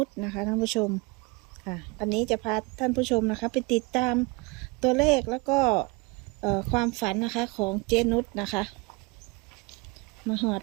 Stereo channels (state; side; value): quieter; left; 26.8 dB